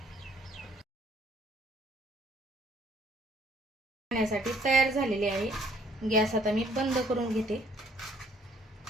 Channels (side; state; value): both; normal; correlation 0.63